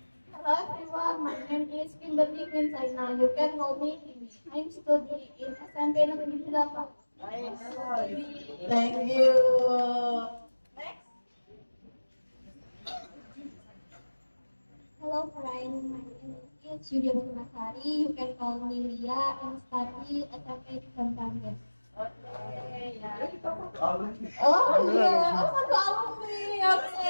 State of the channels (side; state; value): both; inverted; correlation -1.00